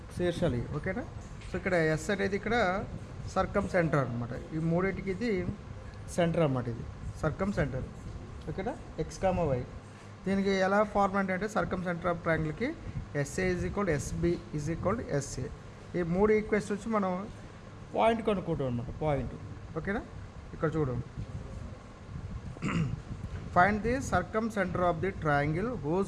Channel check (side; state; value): both; identical; correlation 1.00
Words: శీర్షాలు. ఓకేనా. సో ఇక్కడ ఎస్ అనేది ఇక్కడ సర్కమ్ సెంటర్ అనమాట. ఈ మూడింటికి ఇది సెంటర్ అన్నమాట. ఇది సర్కమ్ సెంటర్. ఓకేనా. ఎక్స్ కామా వై దీనికి ఎలా ఫార్మాట్ అంటే సర్కమ్ సెంటర్ ఆఫ్ ట్రయాంగిల్కి SA is equal SB is equal SA. ఈ మూడు ఈక్వేషన్స్ వచ్చి మనం పాయింట్ కనుక్కుంటాం అనమాట. పాయింట్. ఓకేనా. ఇక్కడ చూడు, find the circumcentre of the triangle